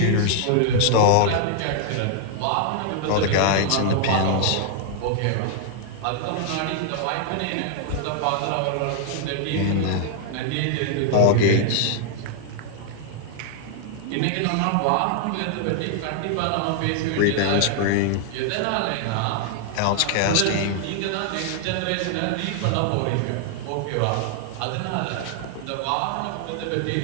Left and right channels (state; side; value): different; both; correlation 0.00